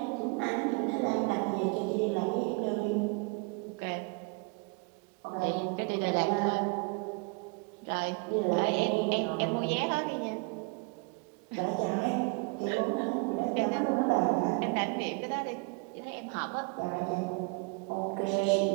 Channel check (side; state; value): left; quieter; 31.6 dB